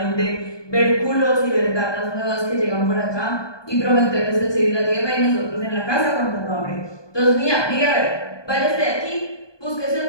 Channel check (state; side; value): late; right; 1.2 ms